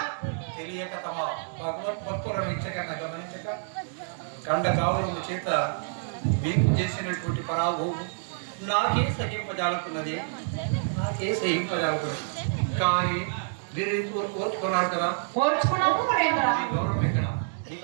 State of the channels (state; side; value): silent; left; digital silence